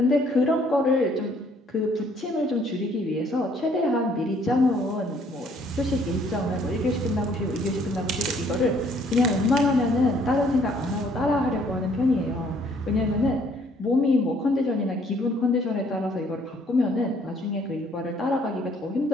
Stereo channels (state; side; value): normal; both; correlation 0.63